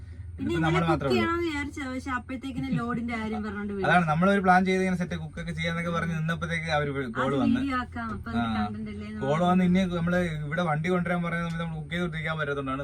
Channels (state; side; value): identical; both; correlation 1.00